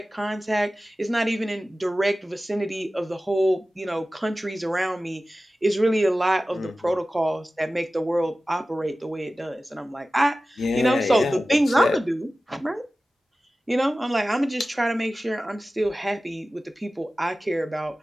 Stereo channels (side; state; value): both; normal; correlation 0.96